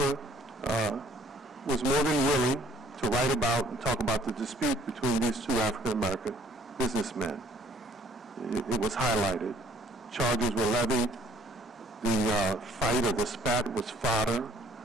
was more than willing to write about and talk about the dispute between these two African-American businessmen. It was highlighted. Charges were levied. The fight or the spat was fodder,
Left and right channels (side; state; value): both; normal; correlation 0.60